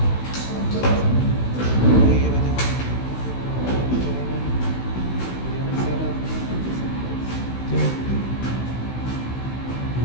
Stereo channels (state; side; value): late; right; 16 ms